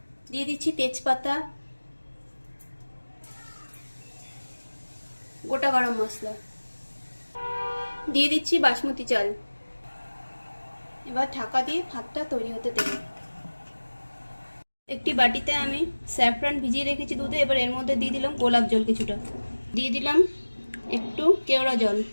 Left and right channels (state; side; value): inverted; both; correlation -1.00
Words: দিয়ে দিচ্ছি তেজপাতা, গোটা গরম মশলা, দিয়ে দিচ্ছি বাসমতি চাল। এবার ঢাকা দিয়ে ভাতটা তৈরি হতে দেব। একটি বাটিতে আমি স্যাফরান ভিজিয়ে রেখেছি দুধে। এবার এর মধ্যে দিয়ে দিলাম গোলাপ জল কিছুটা, দিয়ে দিলাম একটু কেওড়া জল,